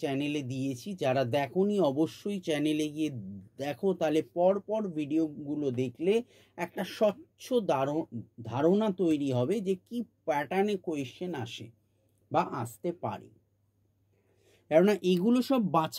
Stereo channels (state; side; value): identical; both; correlation 1.00